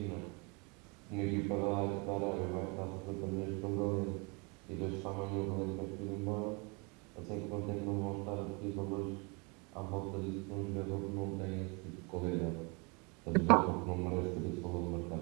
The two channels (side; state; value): left; quieter; 30.9 dB